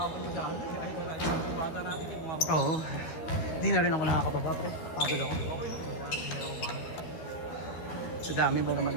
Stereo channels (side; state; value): right; late; 12 ms